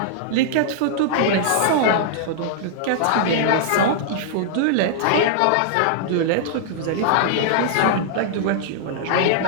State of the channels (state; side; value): different; both; correlation -0.01